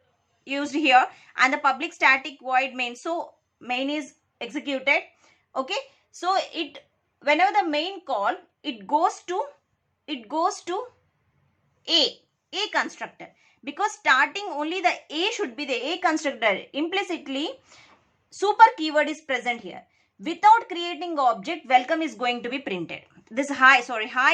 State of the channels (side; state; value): both; identical; correlation 1.00